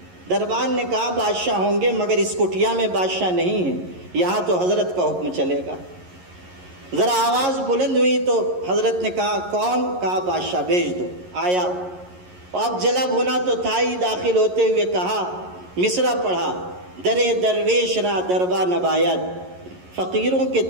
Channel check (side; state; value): left; late; 11 ms